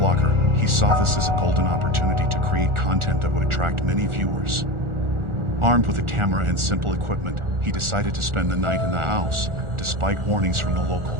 he saw this as a golden opportunity to create content that would attract many viewers. Armed with a camera and simple equipment, he decided to spend the night in the house, despite warnings from the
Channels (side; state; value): left; late; 1.4 ms